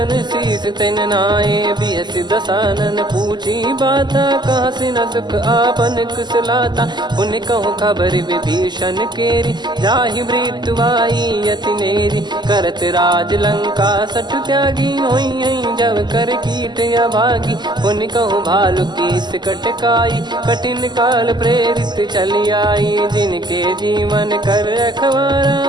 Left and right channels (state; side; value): late; left; 0.21 ms